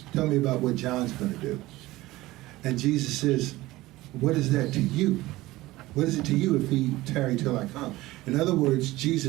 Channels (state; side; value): quieter; left; 18.3 dB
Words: Tell me about what John's going to do. And Jesus says, what is that to you? What is it to you if he tarry till I come? In other words,